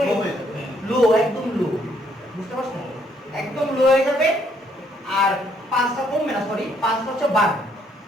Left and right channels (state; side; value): normal; both; correlation 0.69